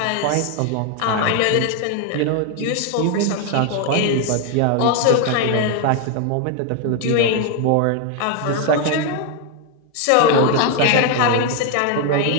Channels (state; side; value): different; both; correlation 0.01